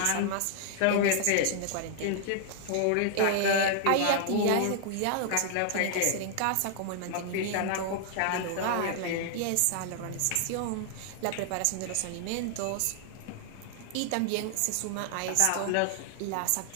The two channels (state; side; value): different; both; correlation 0.00